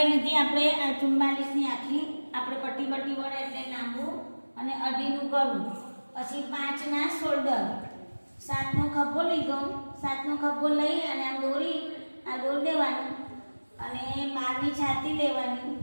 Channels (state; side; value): inverted; both; correlation -1.00